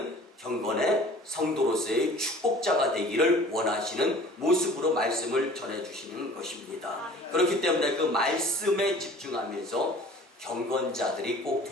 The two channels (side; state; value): both; normal; correlation 0.47